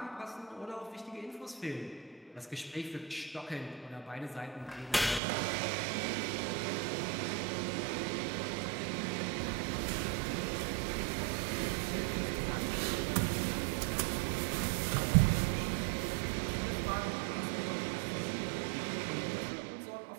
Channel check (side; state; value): left; drops out; at 5.2 s